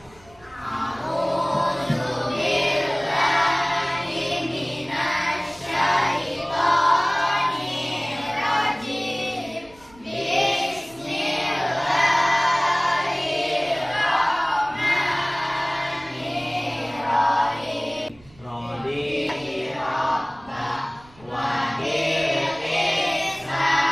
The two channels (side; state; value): right; noise; rumble, 27 dB below the sound